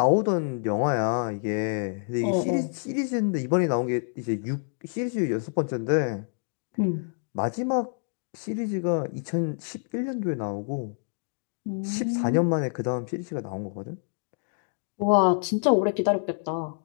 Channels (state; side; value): silent; right; digital silence